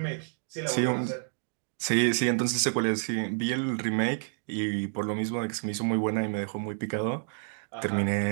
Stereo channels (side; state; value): left; silent; 58 dB below the other